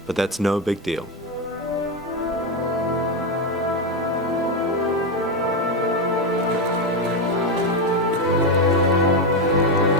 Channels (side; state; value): both; normal; correlation 0.09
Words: but that's no big deal.